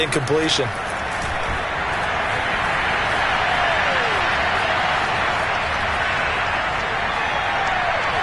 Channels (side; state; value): both; identical; correlation 1.00